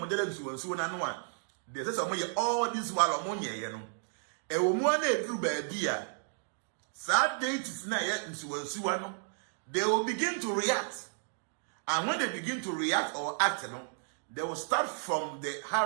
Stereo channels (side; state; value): left; silent; digital silence